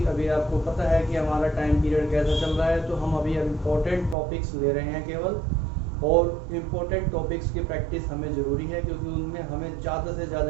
अभी आपको पता है कि हमारा टाइम पीरियड कैसा चल रहा है, तो हम अभी इम्पोर्टेंट टॉपिक्स ले रहे हैं केवल, और इम्पोर्टेंट टॉपिक्स की प्रैक्टिस हमें ज़रूरी है क्योंकि उनमें हमें ज़्यादा से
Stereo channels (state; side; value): drops out; left; at 4.2 s